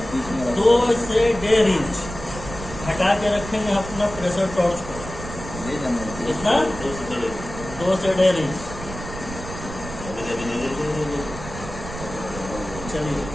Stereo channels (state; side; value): noise; right; rumble, 11 dB below the sound